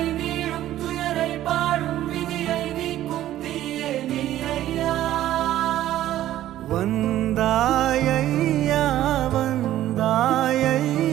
நீளும் துயரை பாடும் விதியை நீக்கும் தீயே நீ ஐயா வந்தாய் ஐயா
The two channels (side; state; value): left; quieter; 13.3 dB